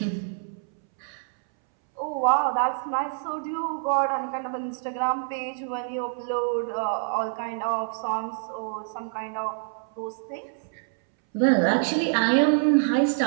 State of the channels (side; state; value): left; silent; 61 dB below the other